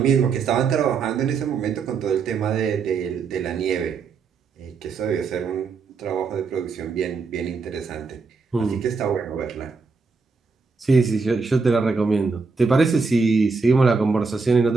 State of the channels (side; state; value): left; quieter; 4.7 dB